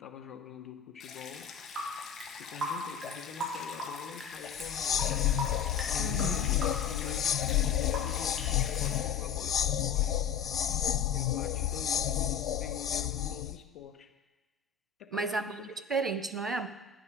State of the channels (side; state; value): right; quieter; 6.9 dB